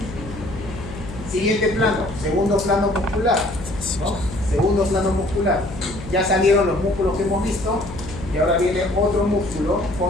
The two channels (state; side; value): noise; left; hum, 12 dB below the sound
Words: Siguiente plano, segundo plano muscular, ¿no? Segundo plano muscular. Ya salieron los músculos que hemos visto y ahora viene otro músculo